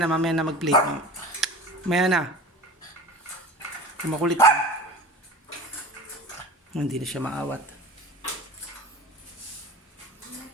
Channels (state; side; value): normal; both; correlation 0.36